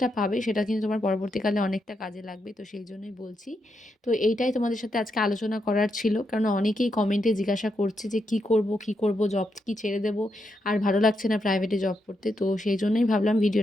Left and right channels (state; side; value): normal; both; correlation 0.82